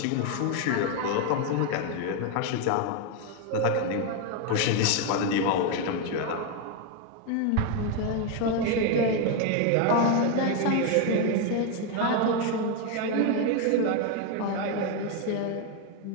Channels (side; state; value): both; different; correlation 0.01